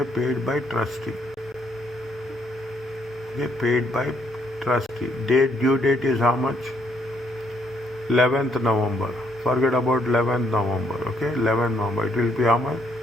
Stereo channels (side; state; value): both; normal; correlation 0.72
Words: paid by trustee. Okay, paid by trustee. Due date is how much? 11th November. Forget about 11th November. Okay, 11th November. It will be how much?